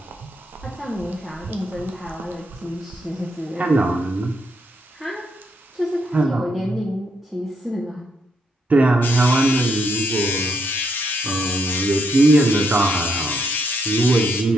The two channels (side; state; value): both; normal; correlation 0.76